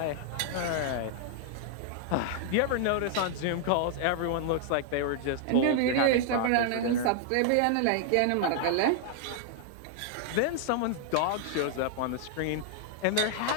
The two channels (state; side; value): different; both; correlation 0.00